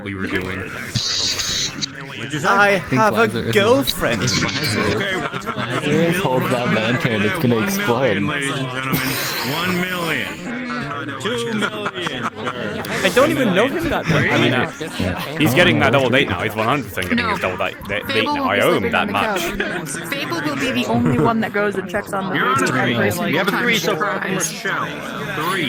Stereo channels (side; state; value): both; identical; correlation 1.00